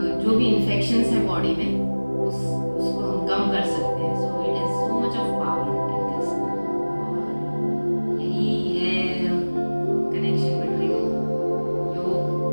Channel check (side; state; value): both; inverted; correlation -1.00